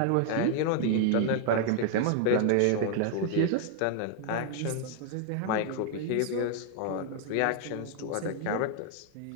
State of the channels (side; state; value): both; different; correlation 0.00